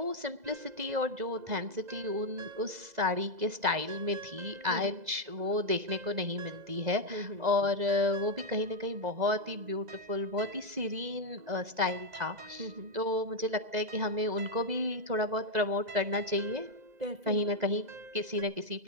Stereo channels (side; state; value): left; late; 2.0 ms